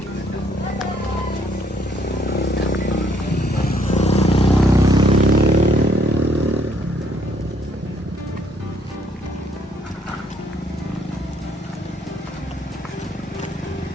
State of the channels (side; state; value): both; normal; correlation 0.68